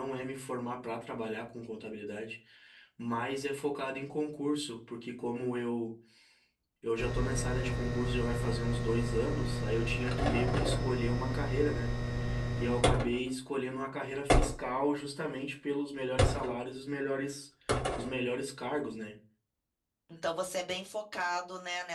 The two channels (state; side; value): identical; both; correlation 1.00